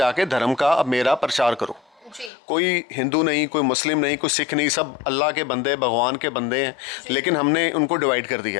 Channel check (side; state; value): right; drops out; at 2.3 s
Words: धर्म का अब मेरा प्रचार करो। कोई हिंदू नहीं, कोई मुस्लिम नहीं, कोई सिख नहीं, सब अल्लाह के बंदे, भगवान के बंदे हैं। लेकिन हमने उनको डिवाइड कर